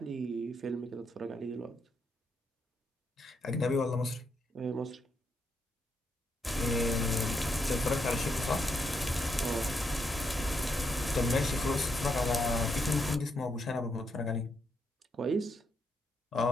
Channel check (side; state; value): both; normal; correlation 0.79